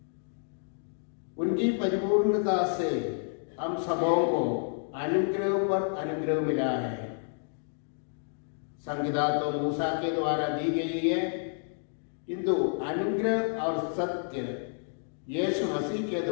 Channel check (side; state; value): right; silent; digital silence